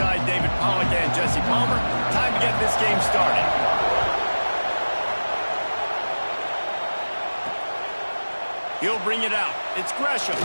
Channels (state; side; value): inverted; both; correlation -1.00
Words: David Pollack and Jesse Palmer. Time to get this game started. He'll bring it out. It's Gresham.